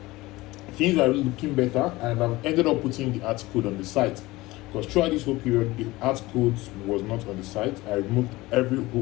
things are looking better, and I've ended up putting the ads code on the site, because throughout this whole period the ads code was not on the site. I removed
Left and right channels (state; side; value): quieter; right; 19.8 dB